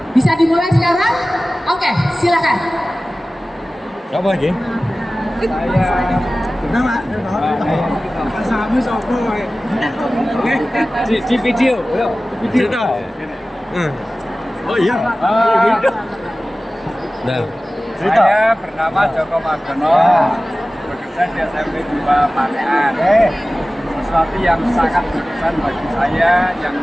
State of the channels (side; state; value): both; normal; correlation 0.97